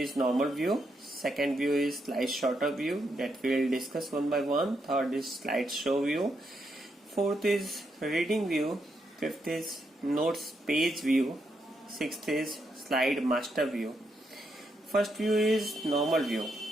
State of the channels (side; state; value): both; normal; correlation 0.80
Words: normal view. Second view is slide sorter view, that we will discuss one by one. Third is slide show view. Fourth is reading view. Fifth is notes page view. Sixth is slide master view. First view is normal view.